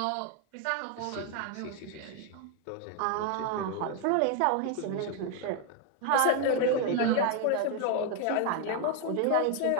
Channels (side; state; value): both; different; correlation 0.00